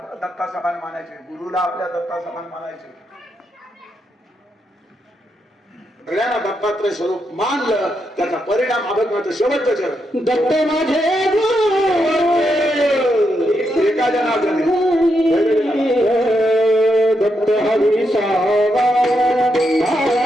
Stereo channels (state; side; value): normal; both; correlation 0.82